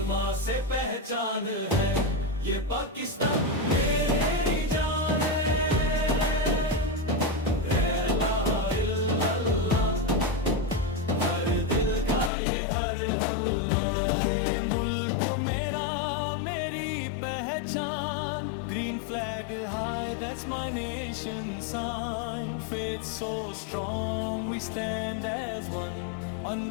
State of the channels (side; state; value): right; drops out; at 12.3 s